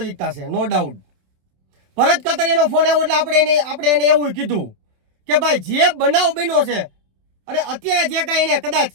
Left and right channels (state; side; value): late; left; 27 ms